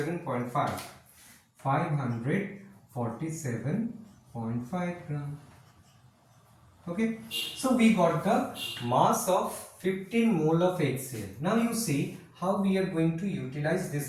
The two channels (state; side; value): identical; both; correlation 1.00